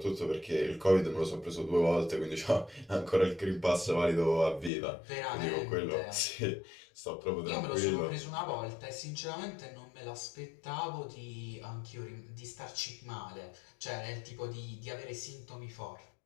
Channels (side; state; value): right; drops out; at 4.7 s